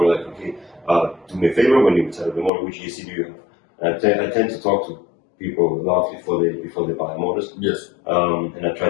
like, okay, do me a favor when you set up the motor, which ESC do you have? And I tend to talk to people a lot before they buy motors. Yes. And I try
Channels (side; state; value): right; drops out; at 2.5 s